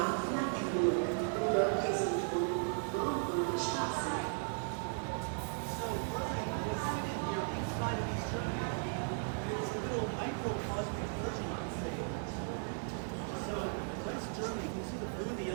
Germany, can you see the blue, the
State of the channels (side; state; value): left; silent; 53 dB below the other